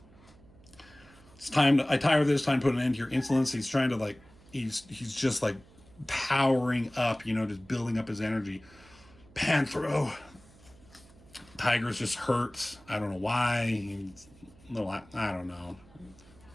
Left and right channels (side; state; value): right; noise; hum, 25 dB below the sound